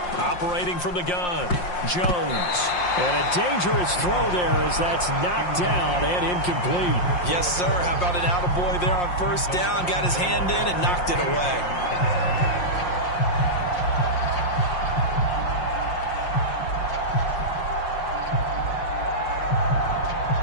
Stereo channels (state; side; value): late; right; 5.6 ms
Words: Operating from the gun, Jones. And a dangerous throw there as that's knocked down and incomplete. Yes, sir. How about an attaboy there on 1st down? Got his hand in and knocked it away.